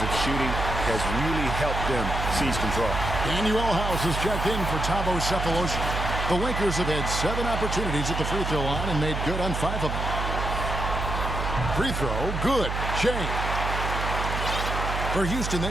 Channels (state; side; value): noise; right; hum, 3 dB below the sound